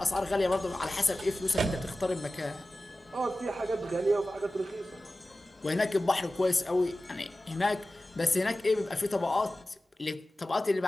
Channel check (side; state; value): both; normal; correlation 0.95